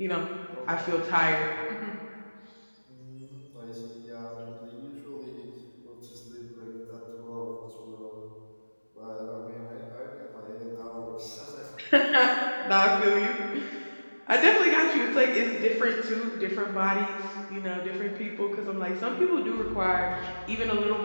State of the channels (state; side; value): inverted; both; correlation -1.00